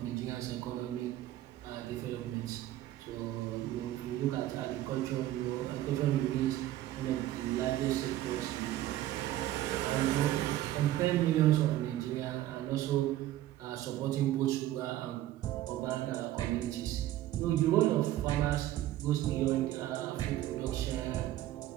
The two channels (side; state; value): left; quieter; 14.1 dB